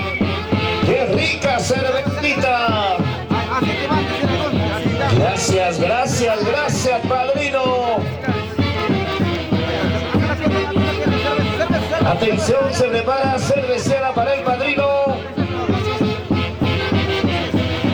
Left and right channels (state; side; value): identical; both; correlation 1.00